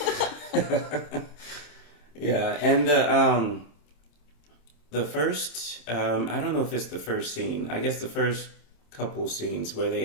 Yeah, and the first, I don't know if it's the first scene. I guess the first couple scenes where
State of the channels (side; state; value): right; late; 26 ms